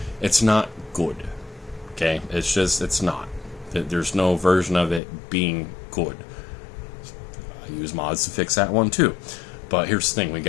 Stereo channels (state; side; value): drops out; right; at 5.0 s